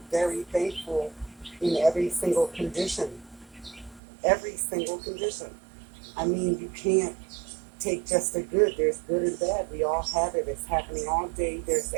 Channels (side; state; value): left; drops out; at 4.0 s